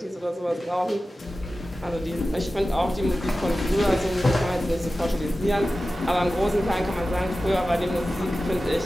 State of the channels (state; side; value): normal; both; correlation 0.95